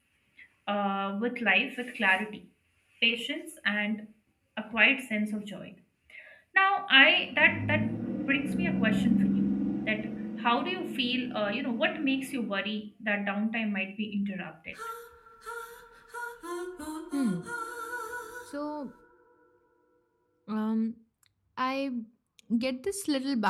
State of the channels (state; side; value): identical; both; correlation 1.00